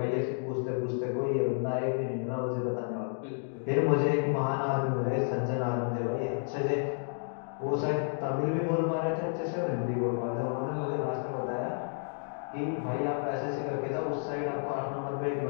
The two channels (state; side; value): silent; right; 57 dB below the other